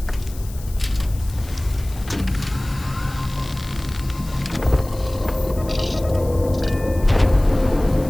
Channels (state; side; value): noise; left; hiss, 19 dB below the sound